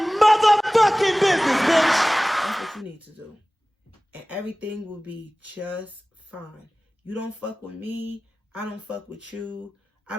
motherfucking business, bitch. That's what you need to do. And everything will be just fine. You don't fuck with me. I don't fuck with you. I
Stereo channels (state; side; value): normal; both; correlation 0.98